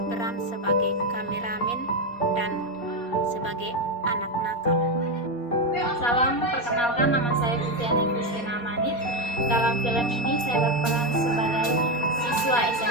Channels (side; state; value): right; late; 4.2 ms